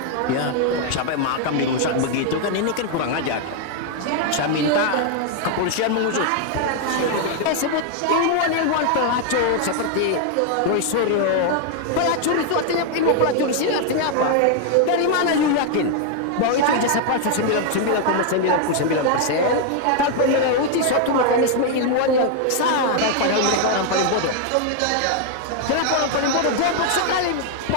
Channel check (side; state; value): both; different; correlation 0.00